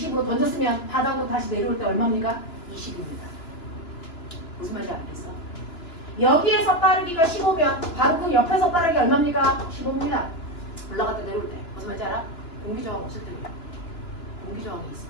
던졌으면 바닥으로 다시 내려올 때 얼마입니까? 20입니다. 무슨 말인지 알겠어? 여기에서 빠르기가 15면 바로 그 옆에서 빠르기 얼마입니까? 15입니다. 올라갔다 내려올 때. 무슨 말인지 알아? 공기저항 없을 때입니다. 공기저항이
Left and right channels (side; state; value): right; late; 2.9 ms